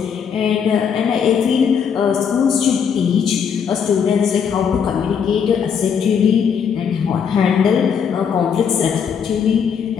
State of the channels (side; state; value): right; quieter; 7.1 dB